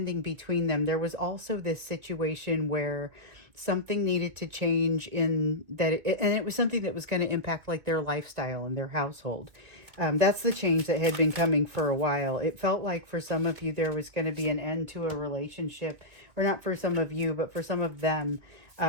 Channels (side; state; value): left; late; 2.5 ms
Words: between them. There was also this situation where something needed to change in that, and it was something that was going to impact like their lifestyle and their household. That's the change that had been coming for a while. It felt like for some of you there was going to be an end to a relationship, or not for some of you, but for some of them,